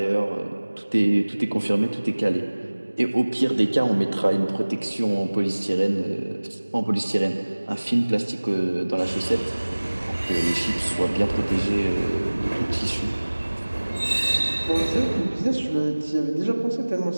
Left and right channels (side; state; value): both; inverted; correlation -1.00